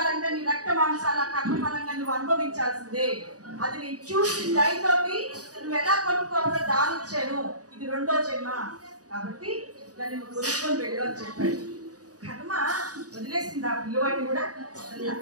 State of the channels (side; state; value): left; late; 0.67 ms